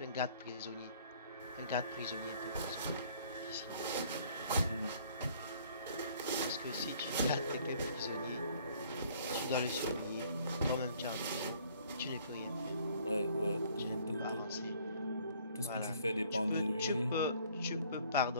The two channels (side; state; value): both; inverted; correlation -0.58